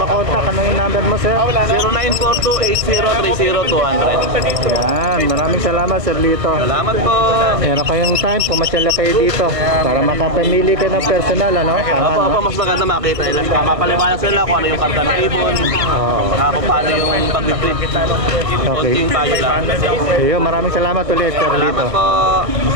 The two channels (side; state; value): left; late; 1.4 ms